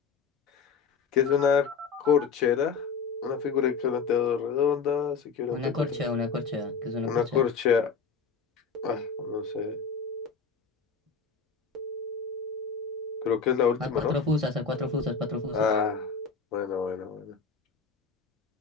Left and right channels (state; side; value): quieter; right; 5.6 dB